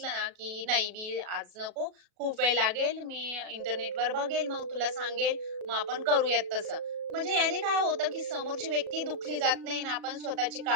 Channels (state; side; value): late; left; 37 ms